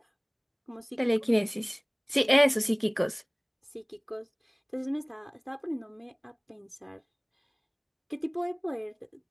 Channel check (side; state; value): both; identical; correlation 1.00